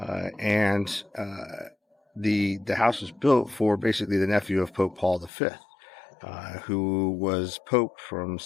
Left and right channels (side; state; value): right; drops out; at 5.3 s